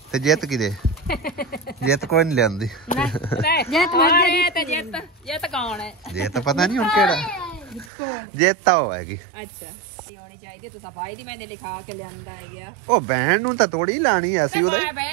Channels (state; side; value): drops out; left; at 7.9 s